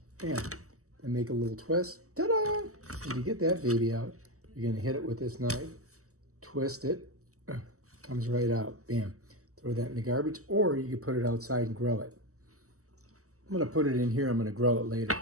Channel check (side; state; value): left; late; 0.65 ms